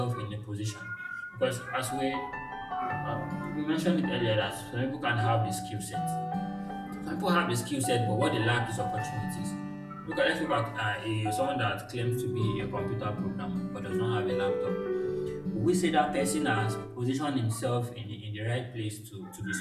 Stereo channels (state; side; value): identical; both; correlation 1.00